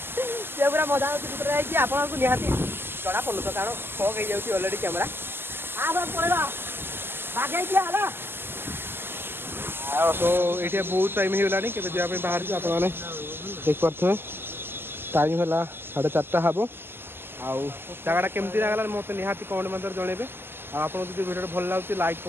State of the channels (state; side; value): late; left; 0.11 ms